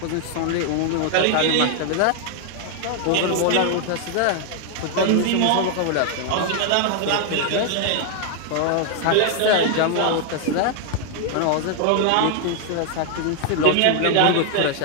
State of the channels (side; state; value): both; different; correlation 0.00